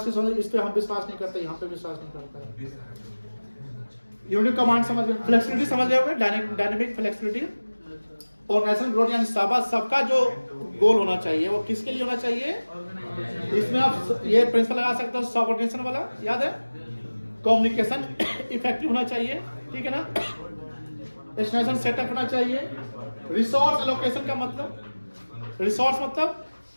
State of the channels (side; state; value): both; inverted; correlation -1.00